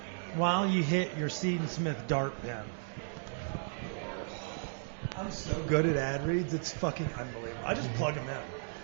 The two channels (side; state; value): left; silent; digital silence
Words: while you hit your Seed & Smith dart pen? I'm so good at ad reads, it's fucking unbelievable. I just plug them in.